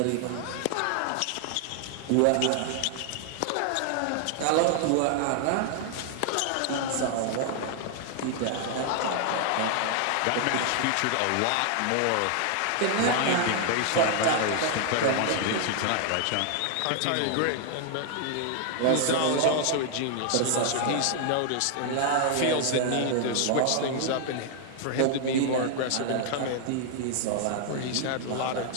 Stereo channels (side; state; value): both; different; correlation 0.00